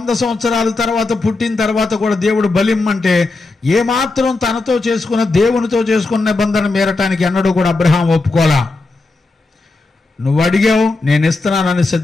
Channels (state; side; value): quieter; right; 3.4 dB